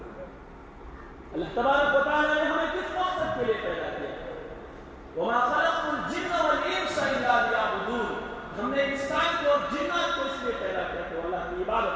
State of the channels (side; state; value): both; identical; correlation 1.00